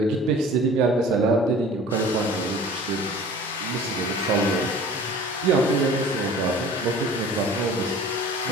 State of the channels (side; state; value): both; normal; correlation 0.44